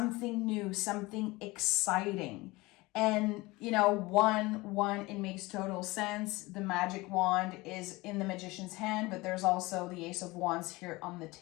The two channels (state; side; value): quieter; right; 21.8 dB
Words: new, something exciting. And, you know, one, it makes total sense. The magic wand is in the Magician's hand, but there's also the Ace of Wands here on the